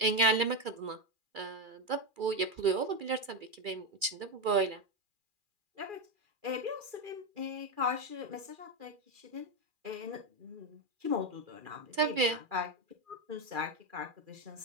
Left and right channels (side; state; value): left; late; 2.4 ms